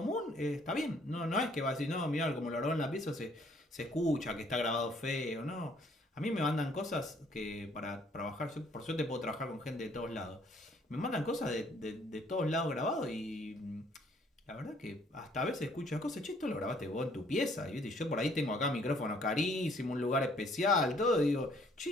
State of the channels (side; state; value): both; normal; correlation 0.62